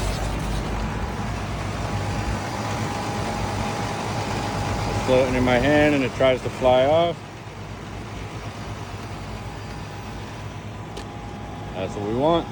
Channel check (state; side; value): identical; both; correlation 1.00